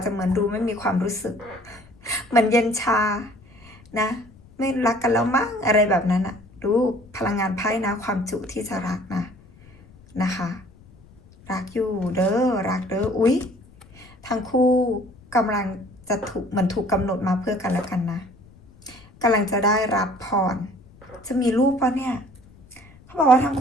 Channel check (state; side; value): noise; left; rumble, 25 dB below the sound